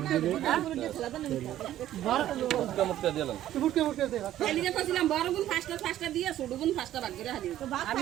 মুক্তা দিলাম এলিগে কইছিলাম বড় গুণ ফাস্টা দিয়ে ছোট গুণ ফাস্টা ভাগ করে হাদি আমি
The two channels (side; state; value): left; quieter; 12.7 dB